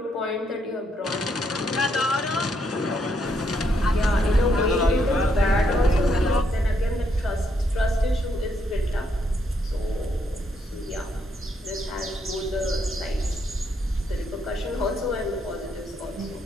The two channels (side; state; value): both; normal; correlation 0.75